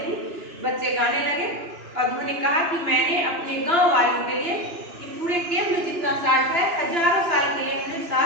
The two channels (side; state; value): left; late; 2.9 ms